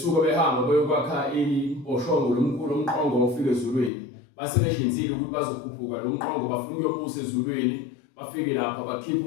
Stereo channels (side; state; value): right; drops out; at 3.9 s